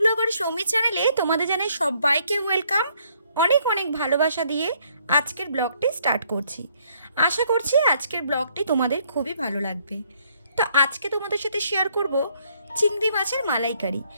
ব্লগার সৌমি চ্যানেলে তোমাদের জানাই সবাইকে ওয়েলকাম। অনেক অনেক ভালোবাসা দিয়ে আজকের ব্লগটি স্টার্ট করছি। আশা করছি আজকের ব্লগটি তোমাদের খুবই ভালো লাগবে। তো আজকে তোমাদের সাথে শেয়ার করব চিংড়ি মাছের মালাইকারি।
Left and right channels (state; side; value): inverted; both; correlation -0.68